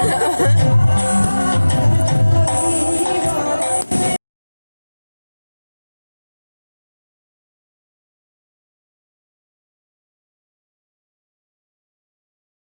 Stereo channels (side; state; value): both; inverted; correlation -1.00